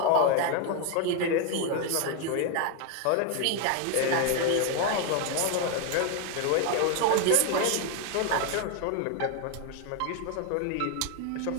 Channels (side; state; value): both; different; correlation 0.01